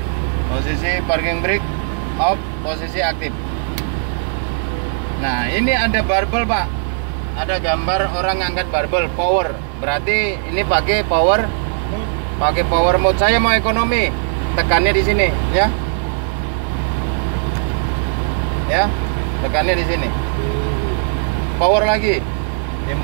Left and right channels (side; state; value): left; silent; 66 dB below the other